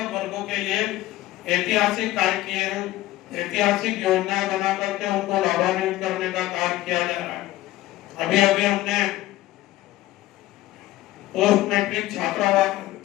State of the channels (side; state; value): right; quieter; 16.3 dB